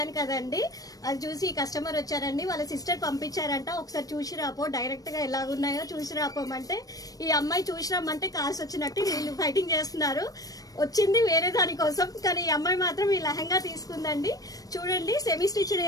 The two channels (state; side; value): late; right; 0.18 ms